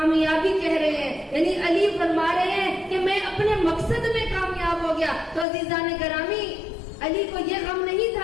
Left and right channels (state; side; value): drops out; right; at 5.5 s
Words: کہہ رہے ہیں. یعنی علی فرما رہے ہیں کہ میں اپنے مقصد میں کامیاب ہو گیا. تو عزیزان گرامی علی کو یہ غم نہیں